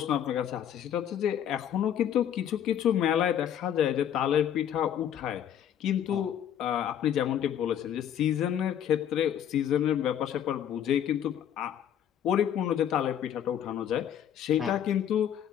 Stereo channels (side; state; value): right; quieter; 9.8 dB